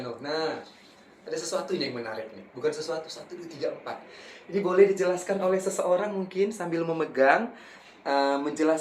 Nah, ada sesuatu yang menarik nih. Bukan sesuatu, 1, 2, 3, 4. Ini boleh dijelaskan oleh seseorang mungkin sambil memegang,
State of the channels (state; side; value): identical; both; correlation 1.00